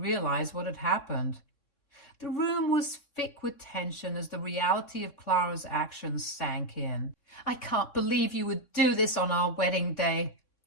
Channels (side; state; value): right; late; 3.6 ms